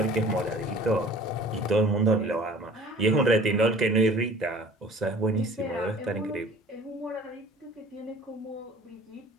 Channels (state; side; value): normal; both; correlation 0.48